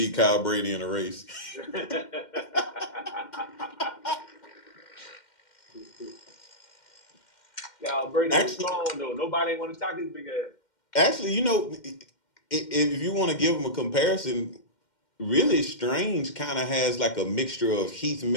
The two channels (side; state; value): right; late; 2.1 ms